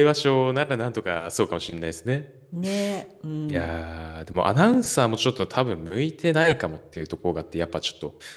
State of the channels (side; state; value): both; identical; correlation 1.00